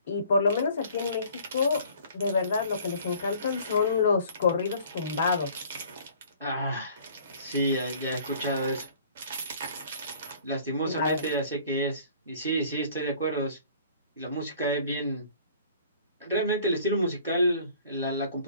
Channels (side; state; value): both; inverted; correlation -0.53